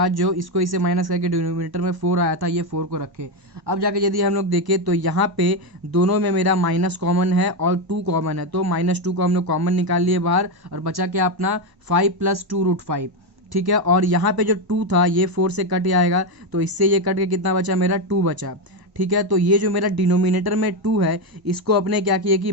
जो इसको इससे माइनस करके डिनोमिनेटर में 4 आया था, ये 4 को रखे। अब जाके यदि हम लोग देखें तो यहाँ पे दोनों में मेरा माइनस कॉमन है और 2 कॉमन है, तो -2 को हम लोग कॉमन निकाल लिए बाहर, और बचा क्या अपना 5 + 2√5, ठीक है। और यहाँ पे जो 2 था ये 4 से कट जाएगा, तो इससे ये कट के कितना बचा, मेरा 2 बचा, ठीक है। तो ये जो मेरा डिनोमिनेटर में 2 है, इसको अपने क्या किए कि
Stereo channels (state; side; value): late; left; 1.1 ms